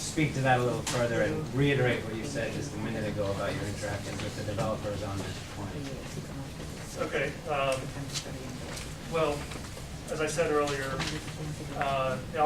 to that a little further and reiterate what you said just a minute ago about your interactions with the developers on this point. Okay. Well, as I said earlier, the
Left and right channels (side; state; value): both; identical; correlation 1.00